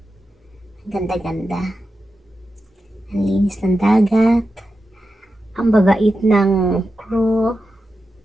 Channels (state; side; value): normal; both; correlation 0.90